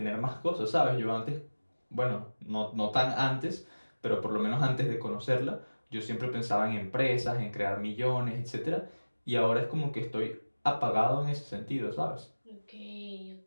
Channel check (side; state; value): both; inverted; correlation -1.00